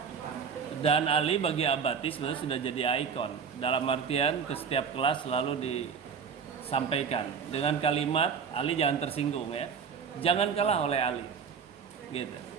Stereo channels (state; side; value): quieter; left; 6.5 dB